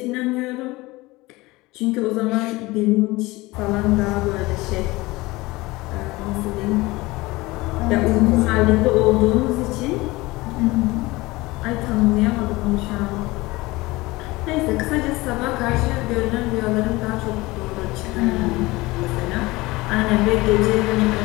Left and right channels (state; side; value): quieter; right; 21.0 dB